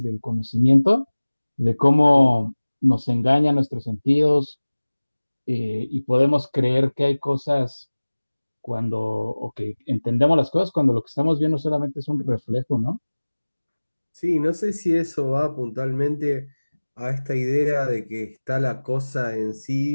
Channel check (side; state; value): both; inverted; correlation -1.00